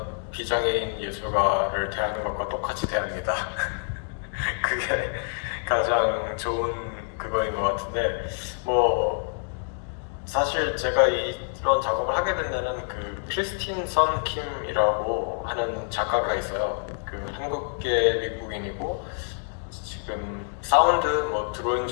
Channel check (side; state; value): right; silent; 60 dB below the other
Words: 비장애인 예술가를 대하는 것과 똑같이 대합니다. 그게 가장 좋은 그거인 것 같은데, 사실 제가 이런 작업을 하게 된 데는 그 크리스틴 선 킴이라고 하는 작가가 있어요. 그 한국계 미국인이고 지금 사운드 드로잉